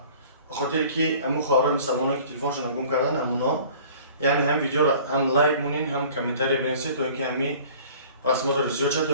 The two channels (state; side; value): inverted; both; correlation -0.48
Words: به خاطر که امو خواهرای مسلمانایی که تلفنشون گم کردن همونا، یعنی هم ویدیو را هم لایک مونین هم کامنتاری بنویسید تا اینکه همی رسمات رو زیاد شد تا